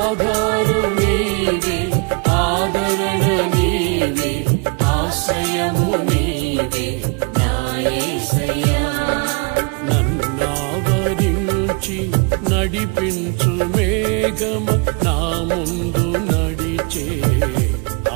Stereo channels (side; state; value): left; quieter; 32.4 dB